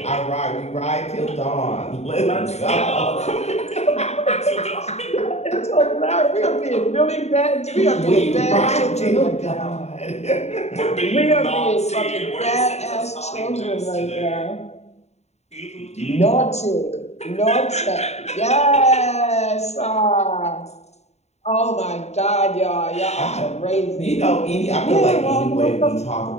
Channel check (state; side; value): late; right; 0.32 ms